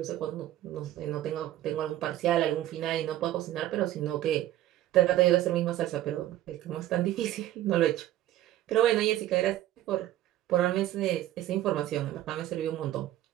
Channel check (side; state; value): left; quieter; 13.9 dB